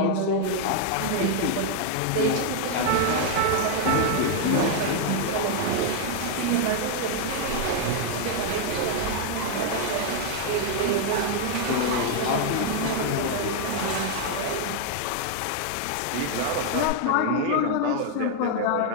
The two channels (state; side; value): different; both; correlation 0.00